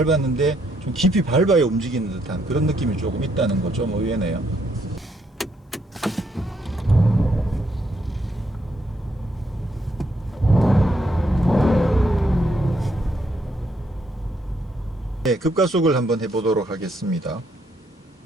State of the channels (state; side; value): normal; both; correlation 0.74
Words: 좀 깊이 밟아야 움직이는 듯한 그런 느낌이 조금 있다는 거 좀 의외네요. 네, 급가속을 한번 해보도록 하겠습니다.